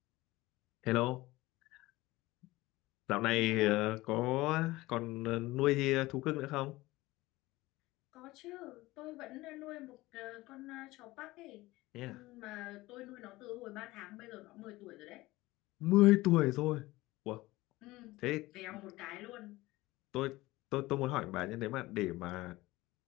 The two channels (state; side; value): quieter; right; 19.3 dB